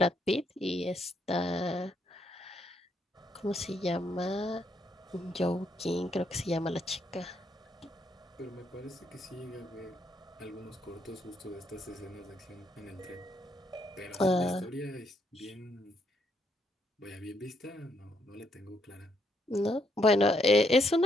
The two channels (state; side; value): normal; both; correlation 0.74